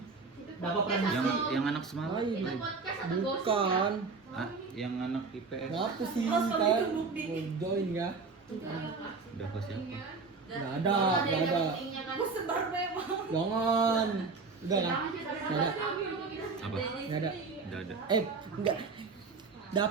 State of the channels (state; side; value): quieter; left; 4.4 dB